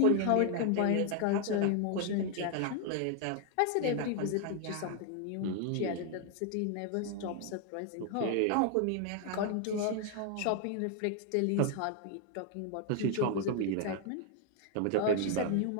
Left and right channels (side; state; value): both; different; correlation 0.00